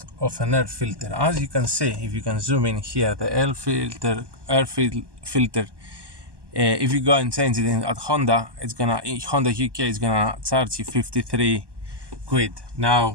of an air filter. As you can see, if you can zoom in here, the air filter, if you go and change it at Honda, Honda UK is gonna charge you 53 quid.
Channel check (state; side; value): late; left; 1.2 ms